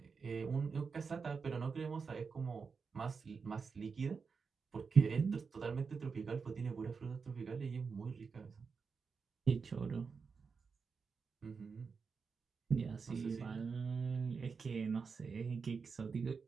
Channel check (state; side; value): quieter; left; 5.3 dB